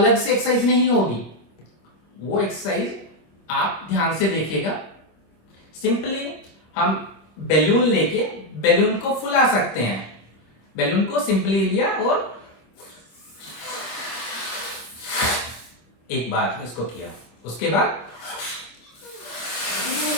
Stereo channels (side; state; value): right; late; 26 ms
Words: से एक्सरसाइज नहीं होगी। वो एक्सरसाइज आप ध्यान से देखिएगा। सिंपली हम बैलून लेके बैलून को फुला सकते हैं। बैलून को सिंपली लिया और एक बार इसको किया, उसके बाद